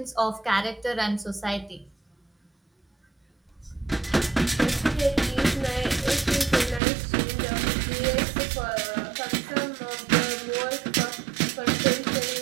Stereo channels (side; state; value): left; drops out; at 6.8 s